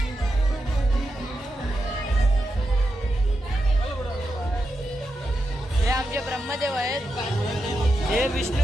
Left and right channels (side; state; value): both; normal; correlation 0.87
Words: हे आमचे ब्रह्मदेव आहेत. हे